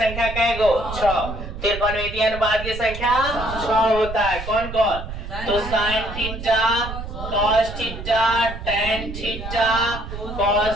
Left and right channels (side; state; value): right; noise; rumble, 9 dB below the sound